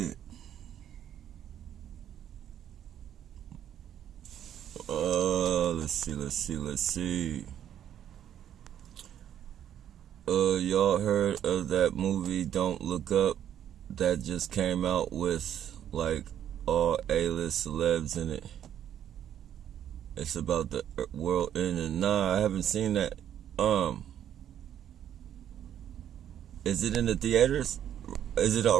Let's see. Y'all heard of that movie Don't Look Up that just came out with like all A-list celebs in it? It's about the world ending. Nah, I haven't seen that. Is it in the theaters? Is it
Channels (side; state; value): left; quieter; 10.2 dB